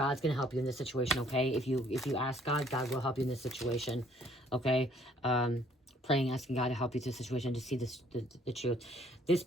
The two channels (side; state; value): both; normal; correlation 0.61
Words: going to help you in this situation, okay? If you ask God, God will help you in this situation, okay? Praying, asking God to help you through the situation to see the truth. This